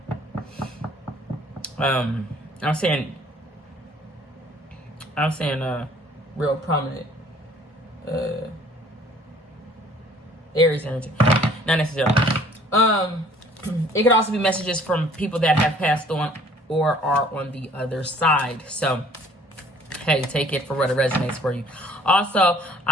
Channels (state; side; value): normal; both; correlation 0.55